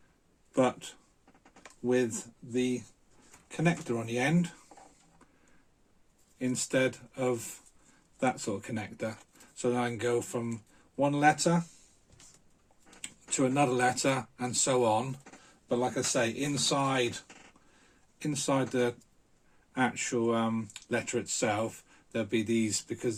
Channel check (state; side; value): identical; both; correlation 1.00